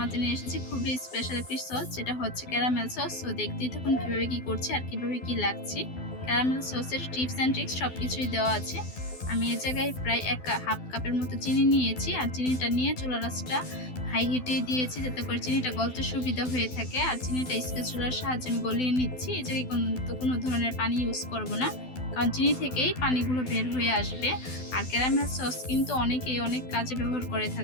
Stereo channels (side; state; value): right; late; 12 ms